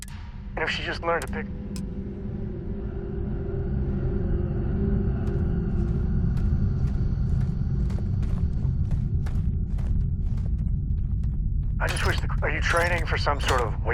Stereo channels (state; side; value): identical; both; correlation 1.00